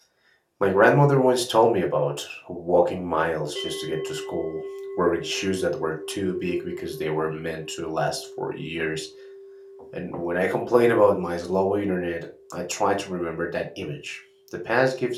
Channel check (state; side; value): identical; both; correlation 1.00